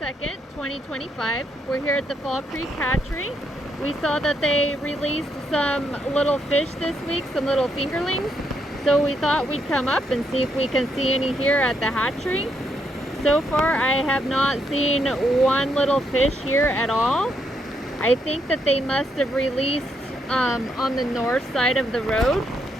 2025. We're here at the Fall Creek Hatchery. We saw that they released some little fish this week, some little fingerlings. So we thought we'd come up and see if we can see any here at the hatchery. So far, I have not seen one little fish here at all. I think that they must have released on the north side of the road.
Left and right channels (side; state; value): both; normal; correlation 0.77